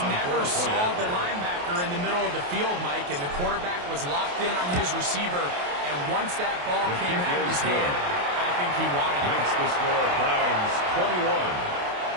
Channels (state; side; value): late; left; 28 ms